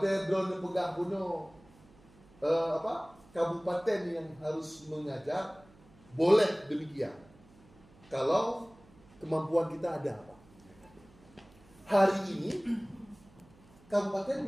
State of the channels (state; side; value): noise; right; hum, 26 dB below the sound